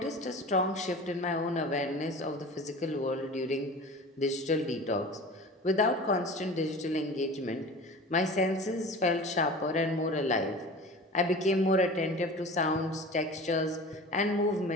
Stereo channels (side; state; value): both; normal; correlation 0.37